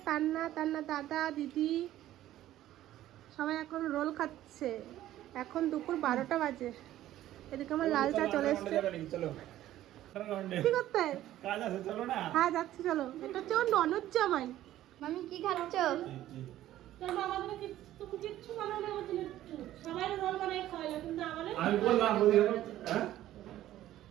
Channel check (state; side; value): quieter; left; 13.6 dB